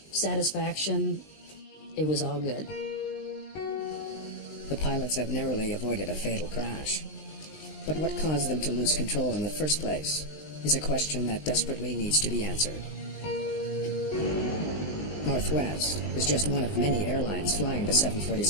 satisfaction, it was all good. The pilots have narrowly avoided a fatal crash. But what caused them to lose control in the first place is a question that desperately needs to be answered. Northwest is just one of many airlines flying the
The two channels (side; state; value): right; late; 19 ms